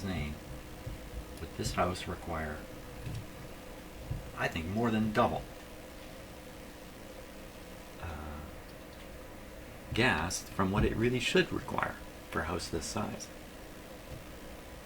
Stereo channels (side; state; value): both; identical; correlation 1.00